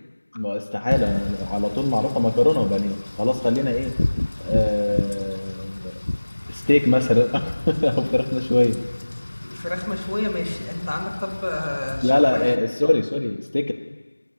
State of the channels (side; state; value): both; inverted; correlation -1.00